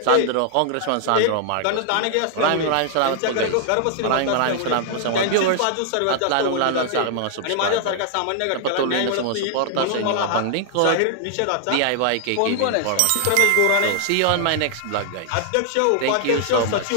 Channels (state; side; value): different; both; correlation -0.01